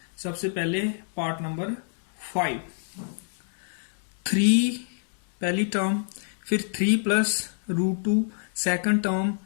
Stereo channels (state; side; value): silent; right; digital silence